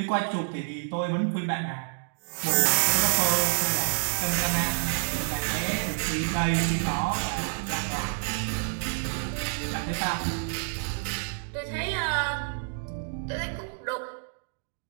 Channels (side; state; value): left; silent; digital silence